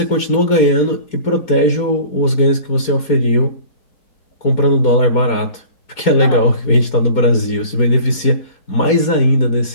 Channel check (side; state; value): right; late; 4.2 ms